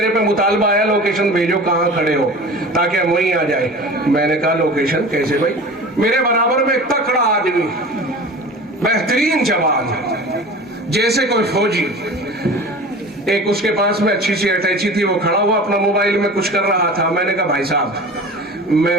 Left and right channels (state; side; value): normal; both; correlation 0.37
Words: پہ مطالبہ آیا لوکیشن بھیجو کہاں کھڑے ہو تاکہ ہم وہیں آ جائیں. میں نے کہا لوکیشن کیسے بھائی؟ میرے برابر میں ایک تکڑا آدمی، بہترین جوان، جیسے کوئی فوجی، ایک اس کے پاس میں اچھی سی اٹیچی تھی، وہ کھڑا ہوا اپنا موبائل میں کچھ کر رہا تھا. میں نے کہا بھائی صاحب